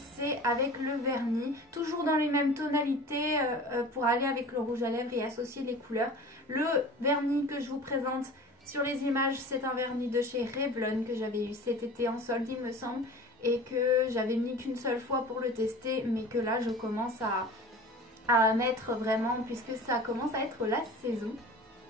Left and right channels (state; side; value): normal; both; correlation 0.39